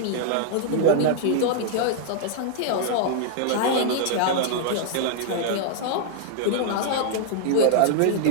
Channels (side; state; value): both; different; correlation 0.00